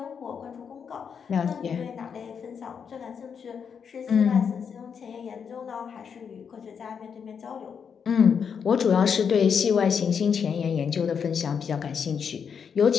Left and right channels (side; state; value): right; quieter; 6.8 dB